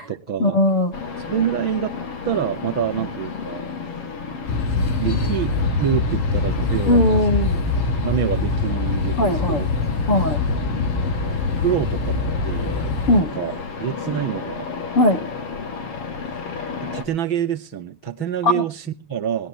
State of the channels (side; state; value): right; late; 6.1 ms